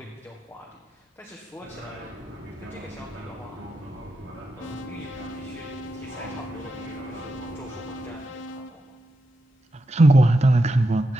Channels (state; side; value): normal; both; correlation 0.87